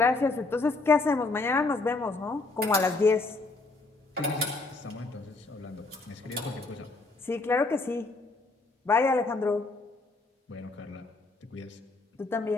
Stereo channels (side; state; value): right; quieter; 3.5 dB